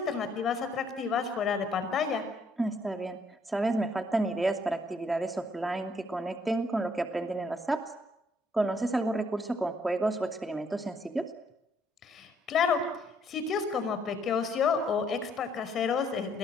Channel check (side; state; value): both; normal; correlation 0.68